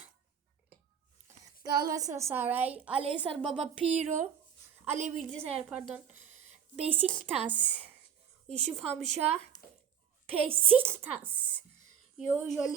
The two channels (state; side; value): quieter; left; 8.2 dB